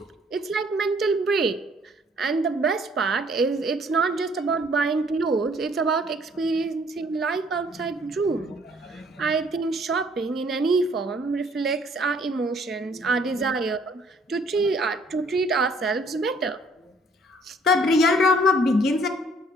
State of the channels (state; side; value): normal; both; correlation 0.61